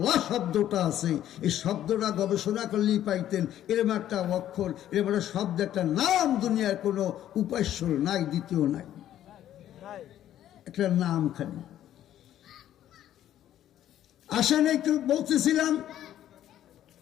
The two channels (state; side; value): quieter; right; 11.8 dB